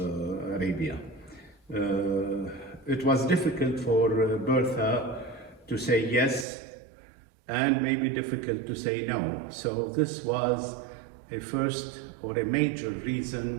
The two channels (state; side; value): drops out; left; at 6.5 s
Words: Arabia. It was difficult for Bertha to say yes, and maybe difficult to say no. So this was a first or a major